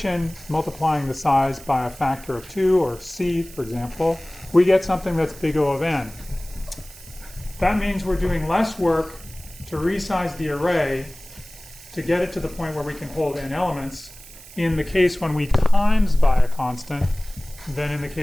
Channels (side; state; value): right; noise; hiss, 19 dB below the sound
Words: multiplying the size by a factor of 2, or c, for example, we get something that's big O of n. That means we're doing less work to resize the array to get it to the point where we can hold n elements in the case when we times by a constant than in the